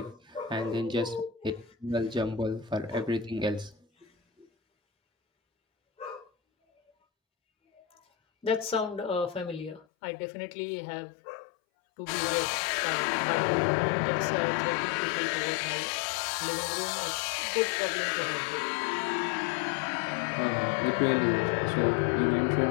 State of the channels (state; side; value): drops out; right; at 9.9 s